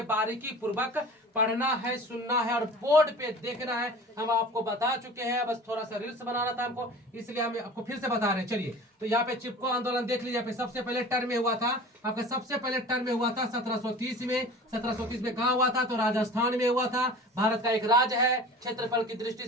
बारीकी पूर्वक पढ़ना है, सुनना है और बोर्ड पे देखना है। हम आपको बता चुके हैं, बस थोड़ा सा रील्स बनाना था हमको, इसलिए हम आपको फिर से बता रहे हैं। चलिए, तो यहाँ पे चिपको आंदोलन देख लीजिए। यहाँ पे सबसे पहले टर्म में हुआ था आपका, सबसे पहले टर्म में हुआ था 1730 में। 1730 में कहाँ हुआ था? तो राजस्थान में हुआ था। भारत का एक राज्य है, क्षेत्रफल की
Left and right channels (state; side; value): normal; both; correlation 0.40